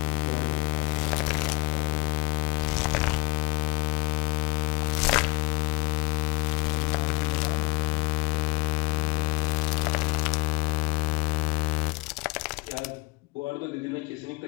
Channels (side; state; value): right; quieter; 26.1 dB